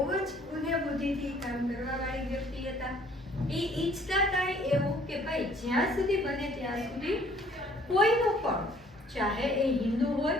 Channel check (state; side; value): normal; both; correlation 0.58